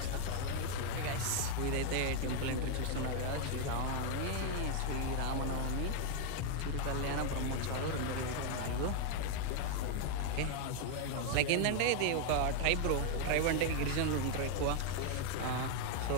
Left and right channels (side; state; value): both; different; correlation 0.00